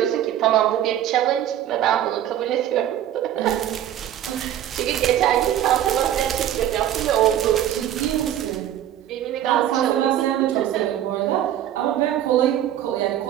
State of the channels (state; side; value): quieter; left; 11.5 dB